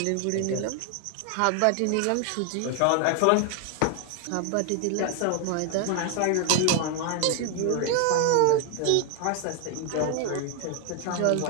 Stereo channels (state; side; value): different; both; correlation 0.00